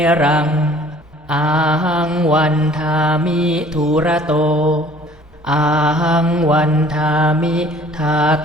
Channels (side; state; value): both; normal; correlation 0.53